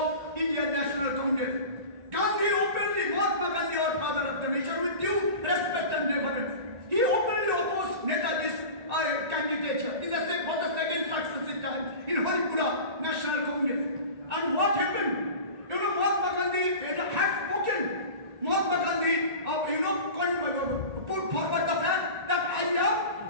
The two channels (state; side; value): late; left; 1.9 ms